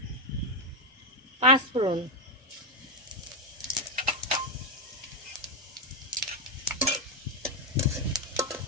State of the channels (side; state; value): both; normal; correlation 0.05